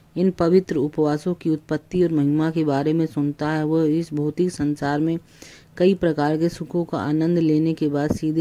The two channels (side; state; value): both; identical; correlation 1.00